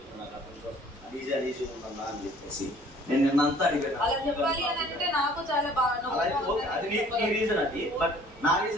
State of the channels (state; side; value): normal; both; correlation 0.54